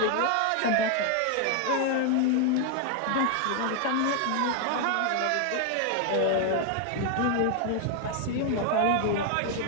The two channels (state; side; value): different; both; correlation 0.00